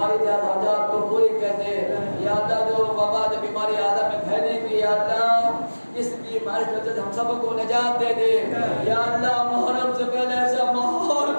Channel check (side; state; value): both; inverted; correlation -1.00